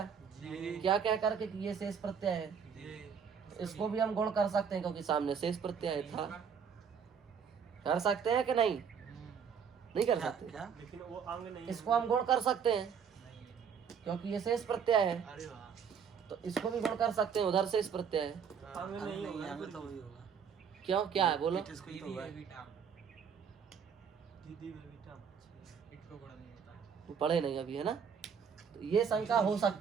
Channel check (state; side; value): quieter; left; 7.0 dB